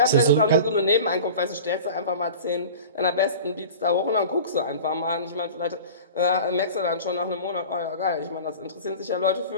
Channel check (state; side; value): inverted; both; correlation -0.37